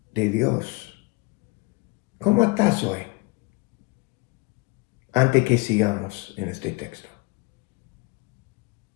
de Dios. ¿Cómo estás hoy? Antes que sigamos en este texto.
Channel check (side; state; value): right; quieter; 26.1 dB